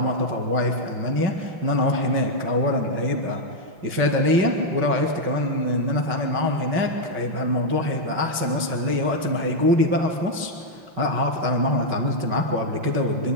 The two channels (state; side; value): late; left; 5.4 ms